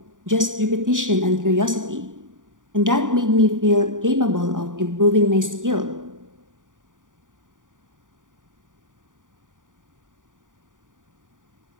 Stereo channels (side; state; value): left; late; 0.88 ms